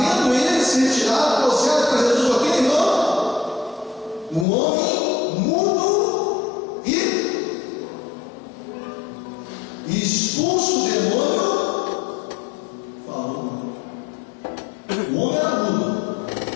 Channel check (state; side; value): drops out; right; at 4.5 s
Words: ele se retirado ao céu para Jesus, ok, irmão? Um homem mudo e expulso o demônio falou. O homem era mudo.